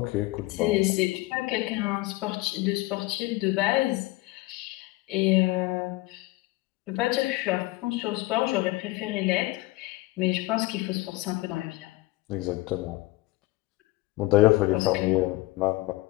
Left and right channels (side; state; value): right; quieter; 20.0 dB